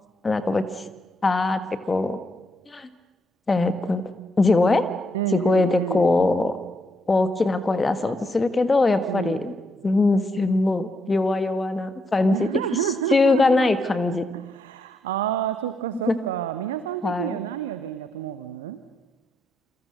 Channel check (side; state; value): both; normal; correlation 0.79